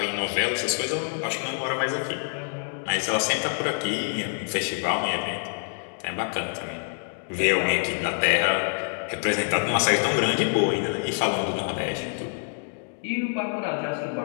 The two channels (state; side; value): silent; right; 56 dB below the other